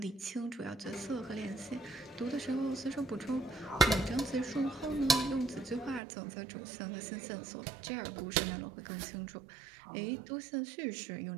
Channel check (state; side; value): drops out; left; at 6.0 s